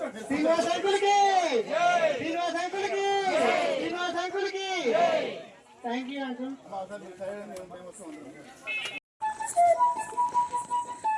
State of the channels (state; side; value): identical; both; correlation 1.00